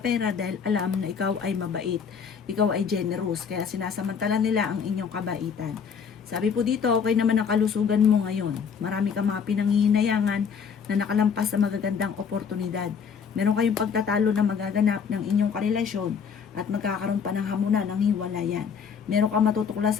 pera dahil alam na ikaw ay mabait. Ikaw ay generous, kaya sinasamantala nila ang inyong kabaitan. Sabi po dito, okay naman ang kalusugan mo ngayon. Marami kang mga pinanghihinayangan na nakalampas sa magagandang oportunidad. Meron kayong pagtatalo na magaganap ng inyong karelasyon at magkakaroon pa ng hamunan ng hiwalayan. Meron kang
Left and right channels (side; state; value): right; quieter; 6.6 dB